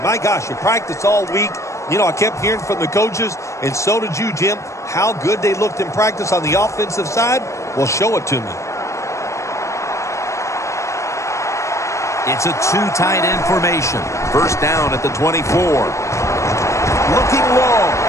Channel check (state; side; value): late; right; 0.15 ms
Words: My gosh, you practiced all week. You know, I kept hearing from the coaches, and so did you, Jim, how good they looked in practice on the offensive side. Well, show it to me. It's a 2 tight end formation. First down at the 24. Looking long.